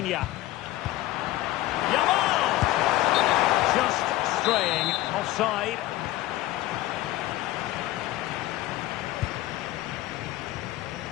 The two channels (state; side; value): quieter; right; 16.2 dB